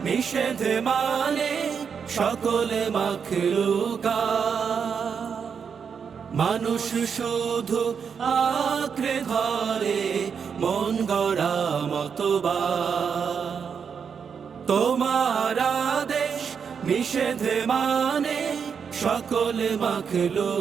নিষেধ মানে সকলে মাখলুকাত, মানুষ শুধু আঁকড়ে ধরে মন গড়া মতবাদ। তোমার আদেশ নিষেধ মানে সকলে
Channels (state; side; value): quieter; left; 6.6 dB